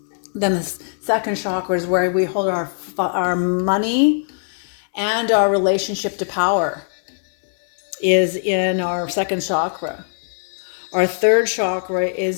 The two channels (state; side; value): silent; right; digital silence